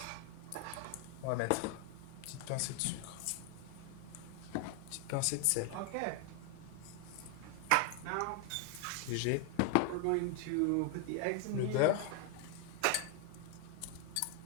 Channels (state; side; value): different; both; correlation 0.00